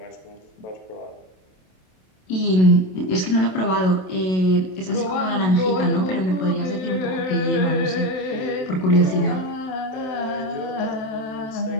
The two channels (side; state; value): right; late; 27 ms